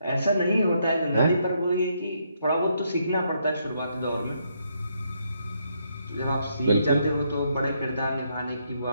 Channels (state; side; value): inverted; both; correlation -0.75